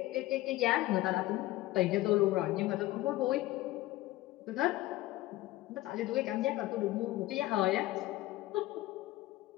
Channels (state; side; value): quieter; right; 17.2 dB